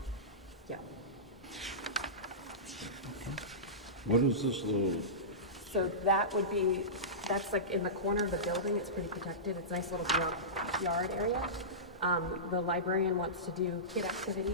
Yeah, What is this little, so that would be, that's like in the corner of the building, it's pretty protected, it's a nice little yard area. The librarian wants to do kid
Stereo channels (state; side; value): normal; both; correlation -0.19